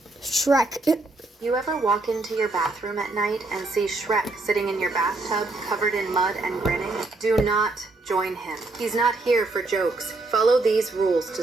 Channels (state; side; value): quieter; left; 3.1 dB